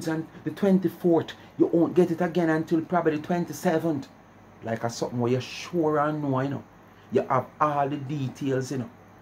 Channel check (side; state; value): both; identical; correlation 1.00